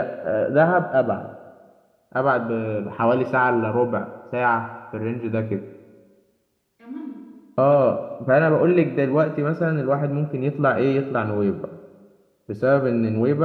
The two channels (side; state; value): both; identical; correlation 1.00